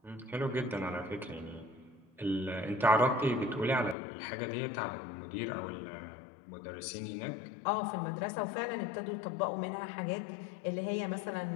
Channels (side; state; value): right; drops out; at 4.0 s